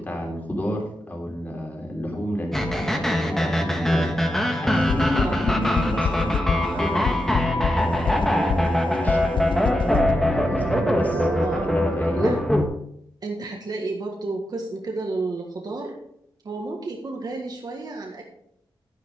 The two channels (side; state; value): both; normal; correlation 0.87